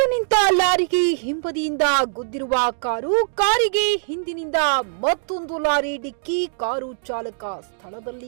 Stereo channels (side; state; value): left; silent; digital silence